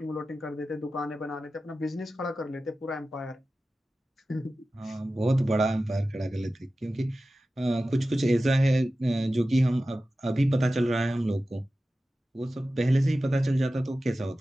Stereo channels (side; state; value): both; normal; correlation 0.94